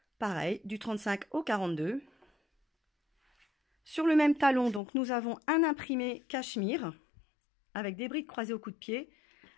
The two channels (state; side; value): drops out; right; at 4.8 s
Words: Pareil, du 35 au 42. Sur le même talon, donc, nous avons un imprimé cachemire avec des brides croisées au coup de pied